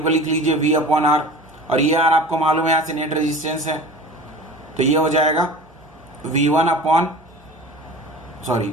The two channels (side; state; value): right; noise; hum, 29 dB below the sound